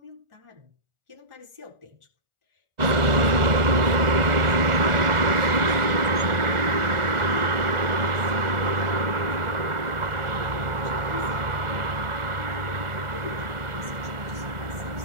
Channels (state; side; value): late; left; 1.4 ms